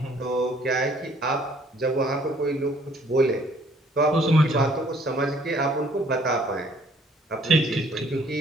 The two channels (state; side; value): normal; both; correlation 0.60